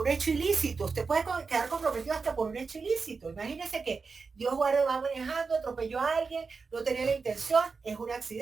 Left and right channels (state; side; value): quieter; left; 4.7 dB